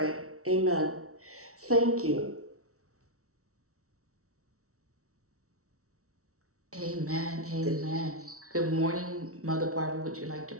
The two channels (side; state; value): left; late; 0.64 ms